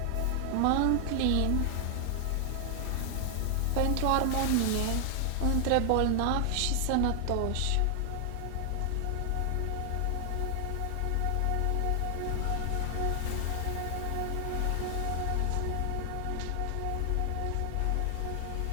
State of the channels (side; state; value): both; different; correlation 0.00